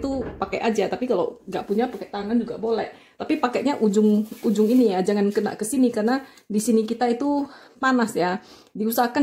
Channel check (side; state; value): both; identical; correlation 1.00